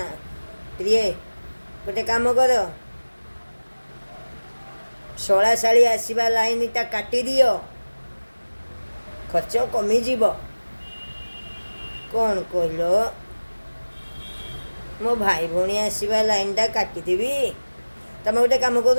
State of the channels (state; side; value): inverted; both; correlation -1.00